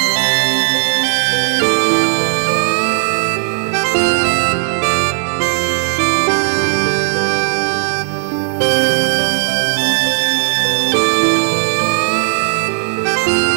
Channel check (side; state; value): left; silent; digital silence